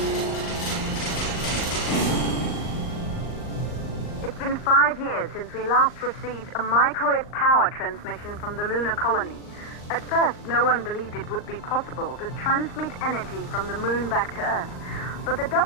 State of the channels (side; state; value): right; late; 39 ms